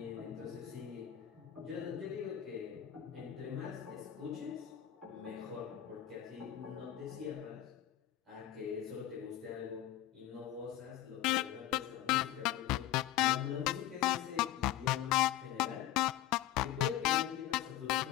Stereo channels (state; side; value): quieter; right; 12.7 dB